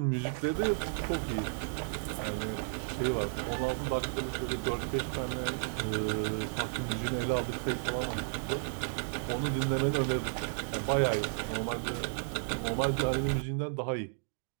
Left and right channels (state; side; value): silent; left; digital silence